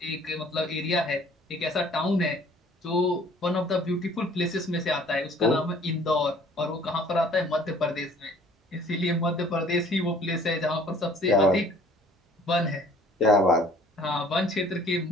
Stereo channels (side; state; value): both; normal; correlation 0.54